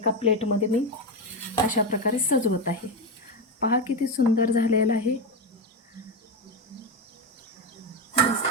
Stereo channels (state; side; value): normal; both; correlation 0.11